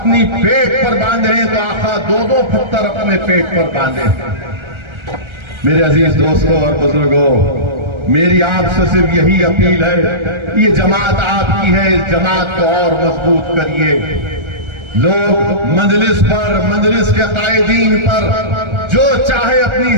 پیٹ پر باندھے ہیں تو آقا دو دو پتھر اپنے پیٹ پر باندھے ہیں۔ میرے عزیز دوستوں اور بزرگوں، میری آپ سے صرف یہی اپیل ہے، یہ جماعت آپ کی ہے، اس جماعت کو اور مضبوط کریے۔ لوگ مجلس پر، مجلس کے قائدین پر جو چاہے اپنی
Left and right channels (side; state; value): left; late; 1.3 ms